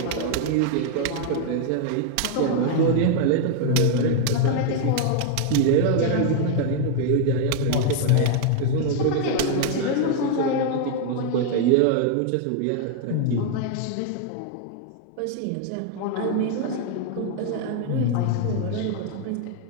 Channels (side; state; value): both; different; correlation 0.00